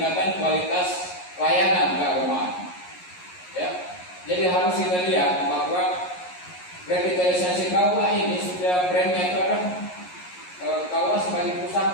kualitas layanan keagamaan. Ya, jadi harus kita lihat bahwa revitalisasi KUA ini sudah brandnya itu adalah KUA sebagai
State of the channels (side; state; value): right; late; 11 ms